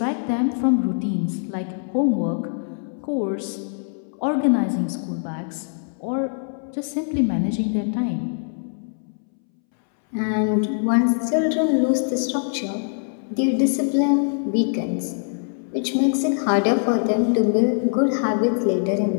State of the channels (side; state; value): right; silent; 64 dB below the other